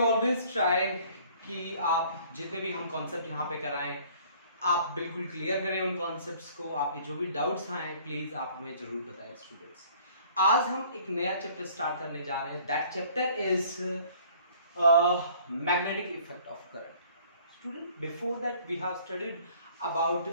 try कि आप जितने भी हम concept यहाँ पे कराएं आप बिल्कुल क्लियर करें उन कॉन्सेप्ट्स को। आपके जो भी डाउट्स आए प्लीज आप हमें जरूर बताएं स्टूडेंट्स। आज हम एक नया चैप्टर स्टार्ट करने जा रहे हैं। That chapter is magnetic effect of current. Student, before that we have studied about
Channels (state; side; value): inverted; both; correlation -0.55